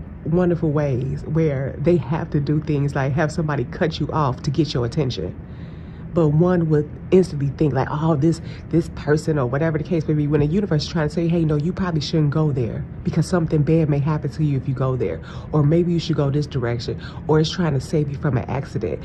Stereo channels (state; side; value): identical; both; correlation 1.00